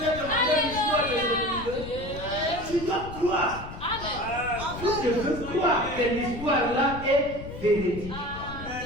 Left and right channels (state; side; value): noise; left; rumble, 11 dB below the sound